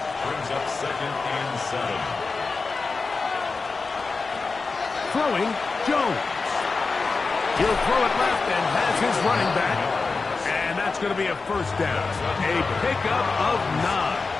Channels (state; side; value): quieter; right; 4.2 dB